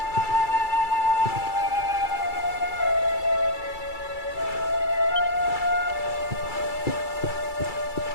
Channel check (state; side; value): late; right; 2.3 ms